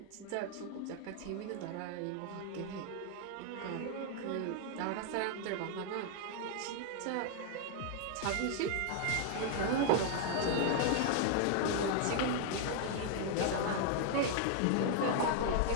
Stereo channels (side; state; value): both; different; correlation 0.00